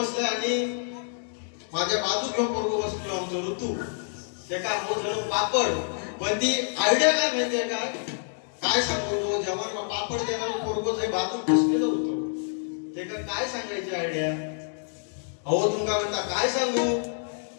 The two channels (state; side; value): silent; right; digital silence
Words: आणि माझ्या बाजूक घेऊन पोरगो बसलो आमचं ऋतू ते का हो झालं पापड. पण ती आयडिया काय माहितीये का काय सांगतो जेव्हा पापड देणार पोरगो जे बाजूक बसलेलं होतं ते का काय सांगायची आयडिया. अहो तुमका म्हणता काय सांगू